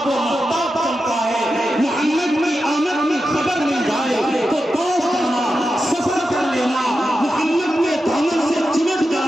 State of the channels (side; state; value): both; normal; correlation 0.90